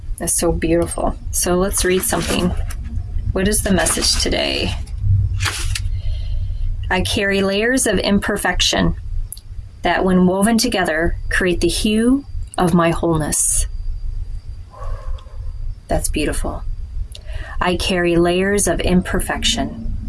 It's so beautiful. So let's read something. What is the message today? I carry layers of imperfection that, when woven together, create the hue of my wholeness. That's beautiful. I carry layers of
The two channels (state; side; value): identical; both; correlation 1.00